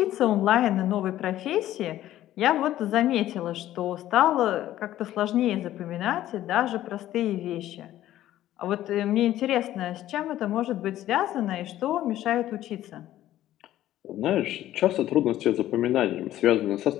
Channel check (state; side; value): quieter; right; 13.5 dB